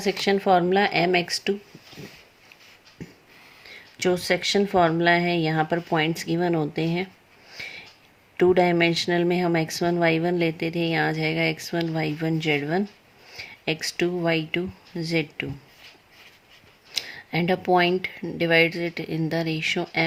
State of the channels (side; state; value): both; identical; correlation 1.00